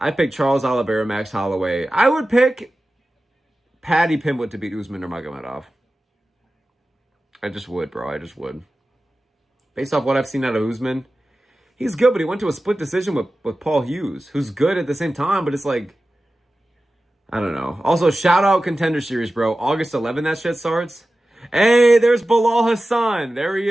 pick Charles Oliveira, Max Holloway. I would pick Paddy Pimblett to beat Usman Nurmagomedov. I just would, bro. I just would. Based off what I've seen out of Usman, he's good, but he went to a split decision with Paul Hughes, who's good at the same time, but it's like, I don't know. Also, shout out Contender Series, bro. August 11th, that shit starts. Hey, there's Bilal Hassan. There he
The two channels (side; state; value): both; normal; correlation 0.95